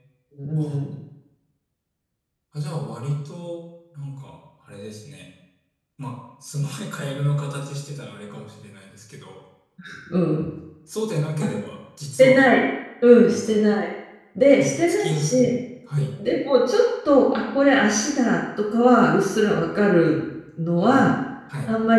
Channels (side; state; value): both; identical; correlation 1.00